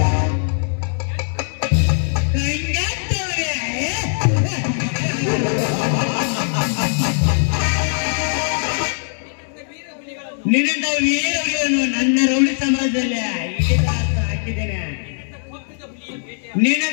ನಿನ್ನ ವೀರವನ್ನು ನನ್ನ ರೌಡಿ ಸಮಾಜದಲ್ಲಿ ಹಾಕಿದ್ದೇನೆ.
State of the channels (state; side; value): silent; right; digital silence